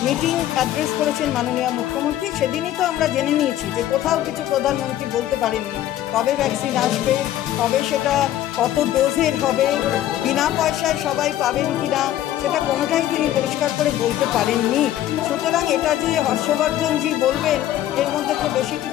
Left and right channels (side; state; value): right; quieter; 12.8 dB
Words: মিটিং অ্যাড্রেস করেছেন মাননীয় মুখ্যমন্ত্রী, সেদিনই তো আমরা জেনে নিয়েছি যে কোথাও কিছু প্রধানমন্ত্রী বলতে পারেননি কবে ভ্যাকসিন আসবে, কবে সেটা কত ডোজের হবে, বিনা পয়সায় সবাই পাবেন কি না, সেটা কোনোটাই তিনি পরিষ্কার করে বলতে পারেননি। সুতরাং এটা যে হর্ষবর্ধনজি বলবেন এর মধ্যে তো বেশি